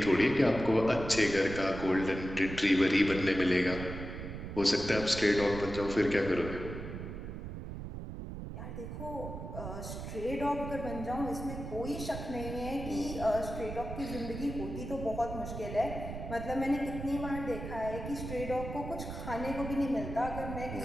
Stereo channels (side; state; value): right; noise; rumble, 8 dB below the sound